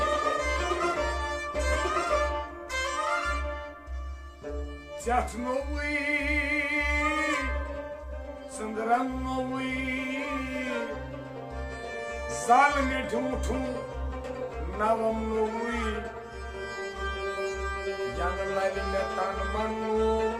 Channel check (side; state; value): both; identical; correlation 1.00